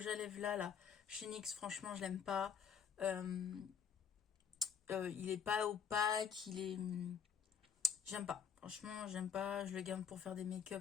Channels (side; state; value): right; quieter; 7.2 dB